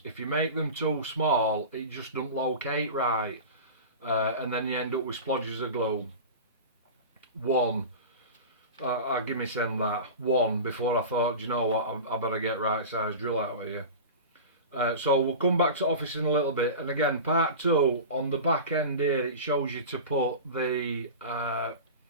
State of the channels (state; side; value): inverted; both; correlation -0.31